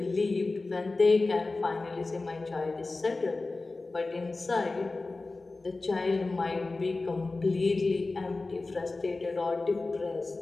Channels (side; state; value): right; quieter; 3.4 dB